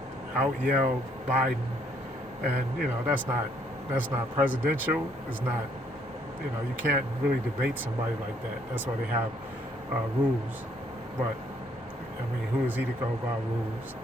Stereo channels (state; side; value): normal; both; correlation 0.67